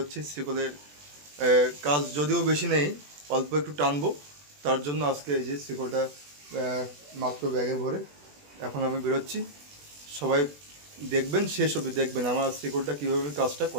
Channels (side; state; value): left; late; 20 ms